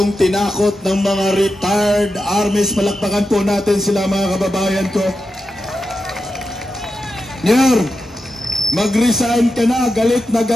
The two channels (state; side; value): normal; both; correlation 0.89